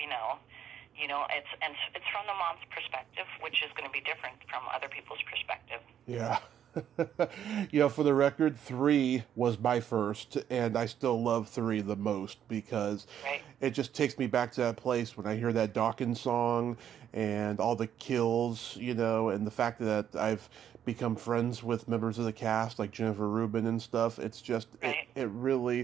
know. It's from the mom's perspective, which is going to be different from other people's perspective. Yeah. For the record, 3 was my first, and I still love 3 the most, because it just takes me back to that place when I hear that Dawkins song and all the kills, and the fact that I've become friends with members of the cast like Jennifer Rubin and stuff. It's just it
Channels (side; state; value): left; quieter; 9.6 dB